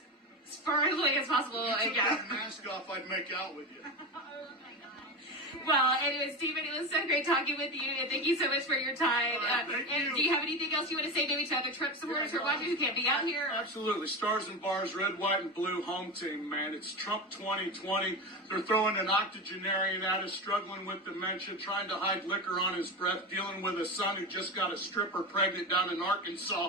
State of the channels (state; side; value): normal; both; correlation 0.21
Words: as far away as possible. If you took that mask off, I'd make out with you. Well, anyway, Stephen, it was so great talking with you, and thank you so much for your time. You. Do you have anything else you want to say maybe to other Trump supporters who are watching who can't be out here? Absolutely. Stars and bars, red, white, and blue home team, man. It's Trump 2020. They're throwing an octogenarian at us, struggling with dementia, trying to hide liquor on his breath, dealing with a son who just got a stripper pregnant down in